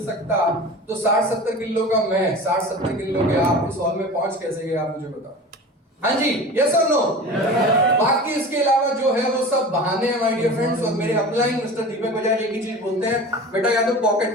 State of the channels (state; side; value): normal; both; correlation 0.35